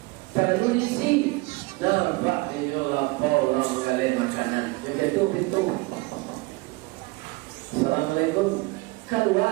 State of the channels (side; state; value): left; quieter; 24.0 dB